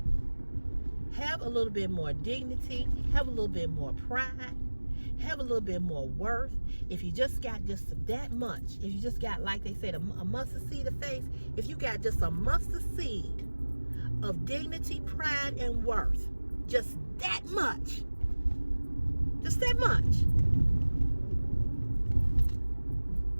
Have a little bit more dignity. Have a little bit more pride. Have a little bit more worth. If you just got just that much, if you just got, like they said, a mustard seed of faith, if you got just a mustard seed of dignity, pride, and worth, just that much,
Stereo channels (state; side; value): inverted; both; correlation -1.00